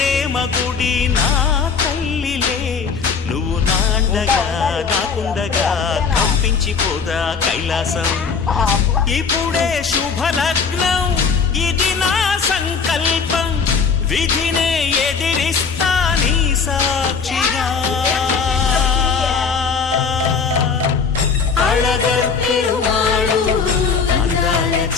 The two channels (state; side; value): quieter; right; 5.6 dB